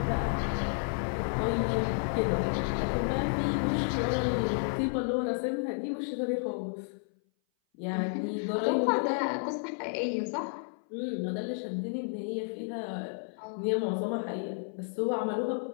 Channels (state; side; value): silent; right; 57 dB below the other